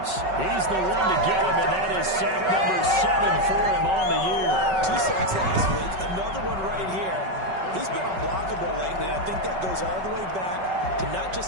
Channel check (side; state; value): left; late; 5.3 ms